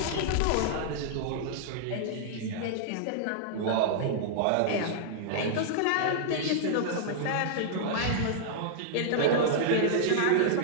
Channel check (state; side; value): different; both; correlation -0.01